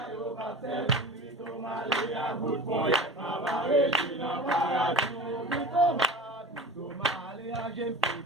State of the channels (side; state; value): both; normal; correlation 0.35